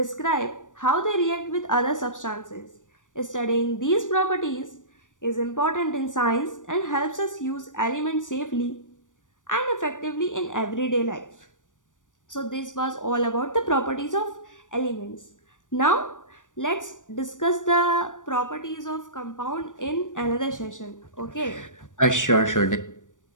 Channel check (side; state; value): right; late; 0.87 ms